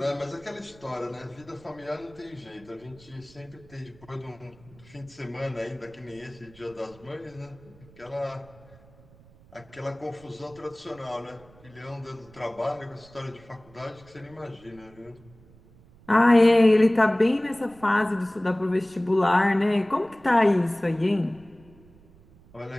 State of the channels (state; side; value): noise; right; rumble, 25 dB below the sound